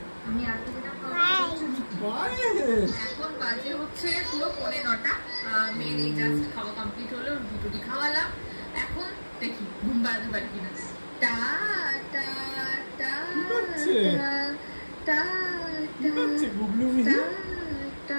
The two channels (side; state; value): both; inverted; correlation -1.00